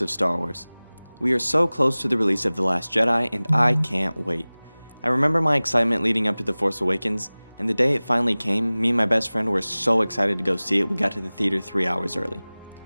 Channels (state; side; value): inverted; both; correlation -0.99